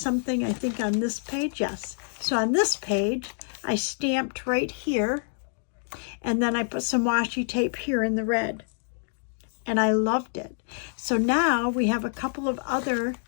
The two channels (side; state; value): right; silent; digital silence